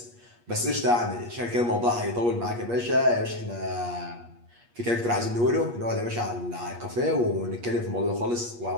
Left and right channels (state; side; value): late; left; 8.4 ms